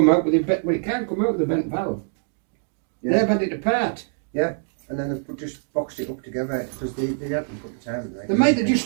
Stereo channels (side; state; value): left; silent; digital silence